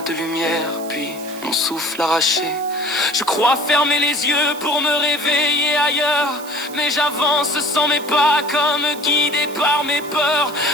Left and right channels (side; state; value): right; noise; hiss, 16 dB below the sound